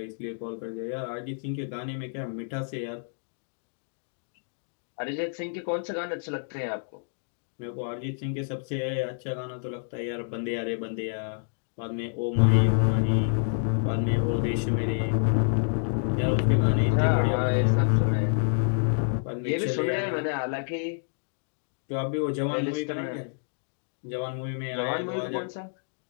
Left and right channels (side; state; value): right; silent; digital silence